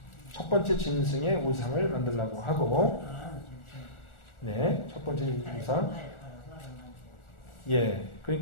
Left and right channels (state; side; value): late; right; 1.4 ms